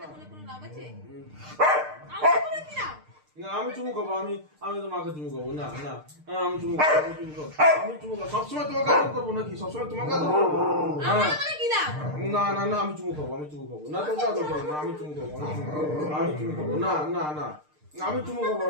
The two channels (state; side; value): late; left; 6.6 ms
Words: আমাকে বলে কোনো লাভ আছে? আমাকে বলে কি লাভ? না আমি চুমু খাবো, আমি তোমাকে চুমু খাবো না না আমি চুমু খাবো, আমি চুমু খাবো সবসময় তোমাকে আদর করবো নাকি? সবসময় তোমাকে আদর করবো? আমাকে বলে কি লাভ? না না না আমি চুমু খাবো, না তোমাকে আদর করবো না, আমি চুমু খাবো, আমি চুমু খাবো না না না আমি চুমু খাবো,